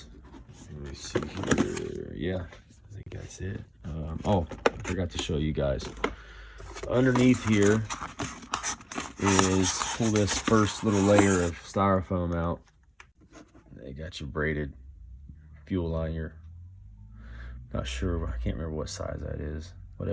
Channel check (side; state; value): both; identical; correlation 1.00